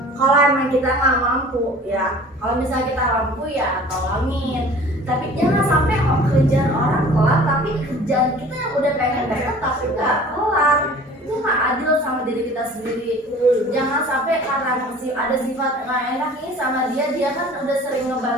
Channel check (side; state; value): both; normal; correlation 0.46